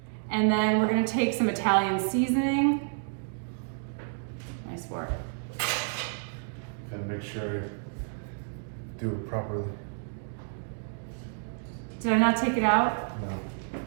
And then we're gonna take some Italian seasoning. Nice work. Gotta make sure I do it properly. Did I not take it out? No.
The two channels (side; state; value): left; silent; digital silence